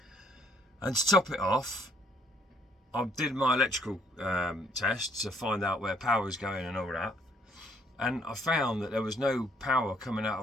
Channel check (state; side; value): normal; both; correlation 0.66